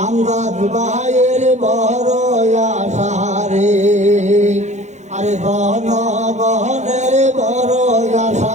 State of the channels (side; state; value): left; late; 0.34 ms